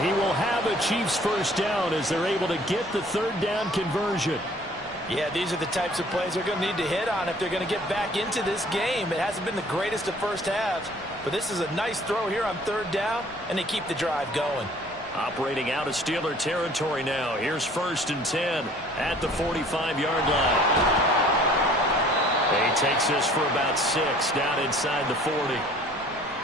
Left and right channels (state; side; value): normal; both; correlation 0.54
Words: he will have a Chiefs first down as they're able to get the third down conversion. Yeah, these are the types of plays they're going to need to hit on if they're going to get back into this game. It hasn't been the greatest of first halves, but this is a nice throw here on third down, and they keep the drive going. Operating out of Steeler territory now. Here's 1st and 10 at the 45-yard line. He takes this for about 6 down inside the 40.